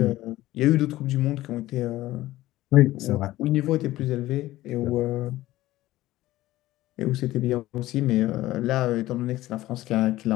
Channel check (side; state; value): right; quieter; 16.3 dB